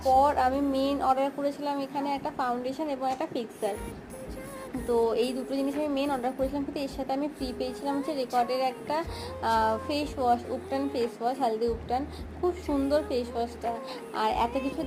আমি মেন অর্ডার করেছিলাম এখানে একটা ফাউন্ডেশন এবং একটা ফিক্সার। তো এই দুটো জিনিস আমি মেন অর্ডার করেছিলাম, কিন্তু এর সাথে আমি ফ্রি পেয়েছিলাম হচ্ছে রেকর্ডের একটা face wash, উপটান face wash, haldi উপটান। খুব সুন্দর ফেস ওয়াশটা। আর এত কিছু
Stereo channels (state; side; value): identical; both; correlation 1.00